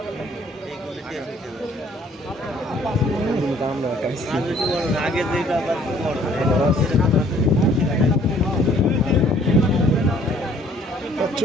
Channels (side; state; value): both; normal; correlation 0.59